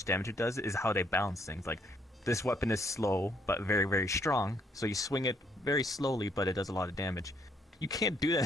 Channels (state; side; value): normal; both; correlation 0.69